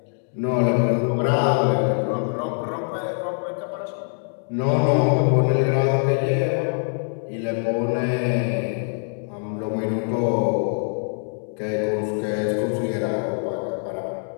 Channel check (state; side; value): silent; right; 63 dB below the other